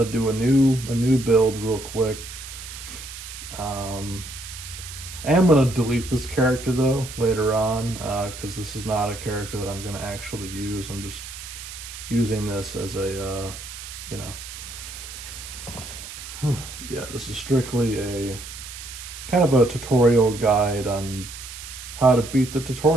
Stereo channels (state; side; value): noise; right; hiss, 12 dB below the sound